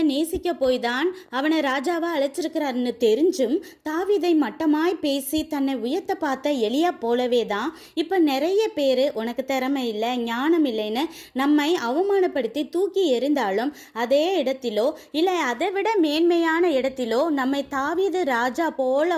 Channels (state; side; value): identical; both; correlation 1.00